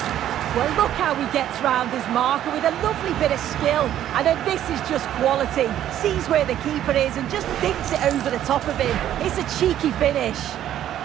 Well, look how he gets round his marker with a lovely bit of skill. And then this is just quality. Sees where the keeper is and just dinks it over the top of him. It's a cheeky finish.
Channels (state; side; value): quieter; left; 11.6 dB